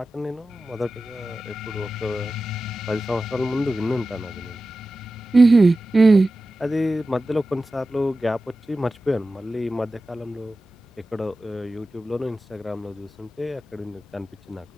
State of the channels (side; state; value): both; normal; correlation 0.94